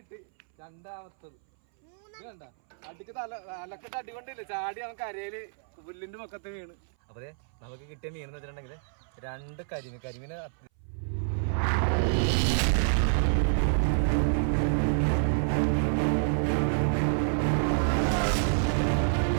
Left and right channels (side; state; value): left; silent; 59 dB below the other